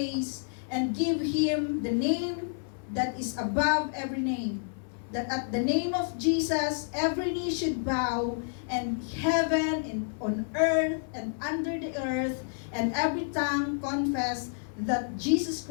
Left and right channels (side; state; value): right; silent; 58 dB below the other